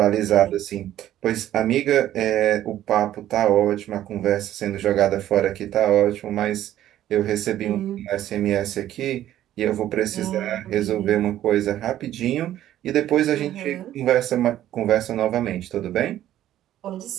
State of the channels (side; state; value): left; quieter; 12.6 dB